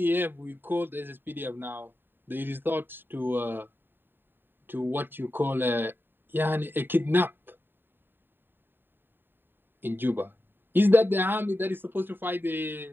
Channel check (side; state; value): left; late; 0.096 ms